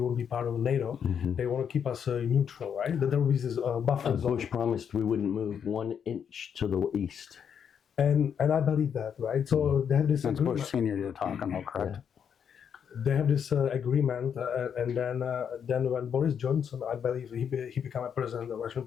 be part of NATO. Mm-hmm. They want to keep us neutral, right? That there will be this buffer zone. Bush promised we wouldn't move 1 inch to the east. And I believe that, right? So they have this that's agreement. Bush Senior you're talking about, correct? They have this agreement, and then when Boris Johnson, I believe he became a president, a Russian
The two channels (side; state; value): right; quieter; 7.8 dB